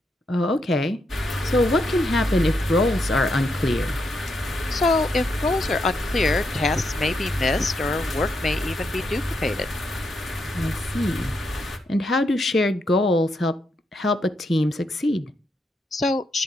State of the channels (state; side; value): normal; both; correlation 0.81